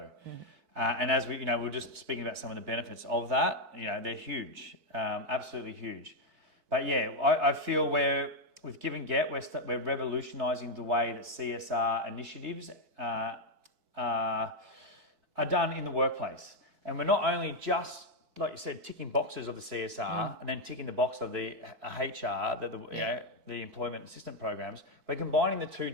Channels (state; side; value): late; left; 4.6 ms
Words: And as we were just speaking about some of the benefits of that, they're huge, absolutely huge. But I feel with Give and Get, we're revolutionising the way that CSR initiatives are done in the workplace. And we're not only just, like you said, ticking boxes of the CSR and then ticking the box of the HR, the employment assistant programs. We're combining the two